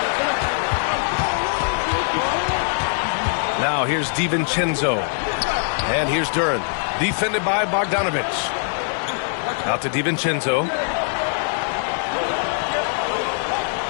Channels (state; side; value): silent; right; digital silence